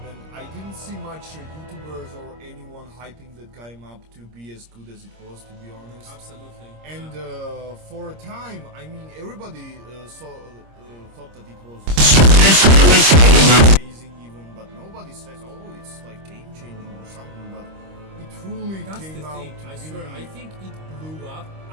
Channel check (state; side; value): late; left; 26 ms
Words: when I didn't see much YouTubers or anyone hyping that game up to be as good as it was, to be honest. Absolutely. And for a time, I mean, everybody thought that it was amazing, even, but nobody says, "Oh, it's like game changing or something." But it truly That's came the out thing. to I be. swear. I think it blew up